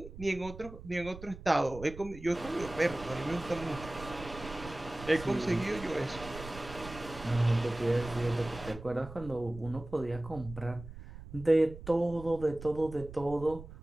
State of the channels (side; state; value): right; noise; rumble, 14 dB below the sound